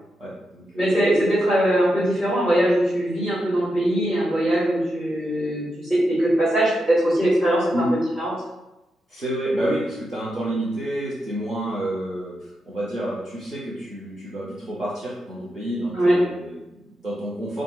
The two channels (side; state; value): both; normal; correlation 0.86